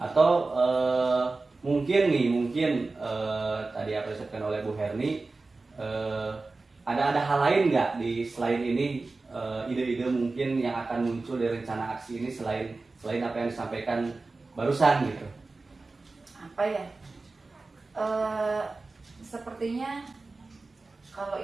mungkin tadi apa disebutkan oleh Bu Herni, ada hal lain nggak di selain ini, ide-ide mungkin yang akan muncul dari rencana aksi ini selain apa yang disampaikan barusan gitu? Apa ya? Sepertinya kalau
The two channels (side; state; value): left; quieter; 3.6 dB